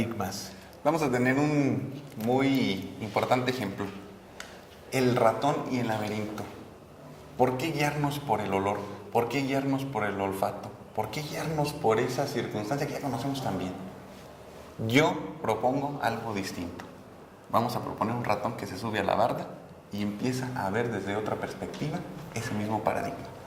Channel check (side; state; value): both; identical; correlation 1.00